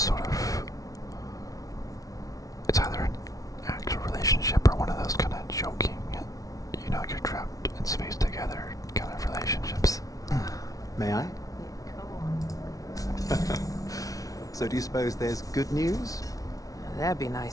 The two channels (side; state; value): right; late; 0.17 ms